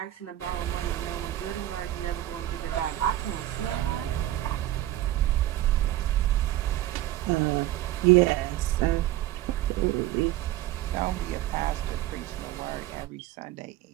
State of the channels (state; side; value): quieter; left; 14.6 dB